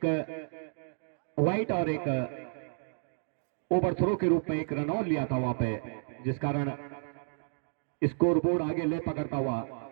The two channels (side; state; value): left; silent; digital silence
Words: वाइट और एक ओवर थ्रो के रूप में 1 रन और लिया था वहां पे, जिस कारण स्कोर बोर्ड आगे ले पकड़ता हुआ।